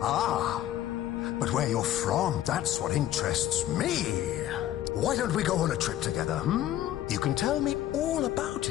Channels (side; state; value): right; quieter; 12.7 dB